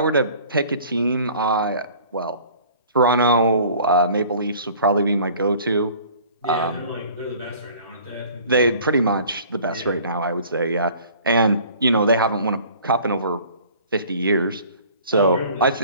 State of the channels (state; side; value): inverted; both; correlation -0.50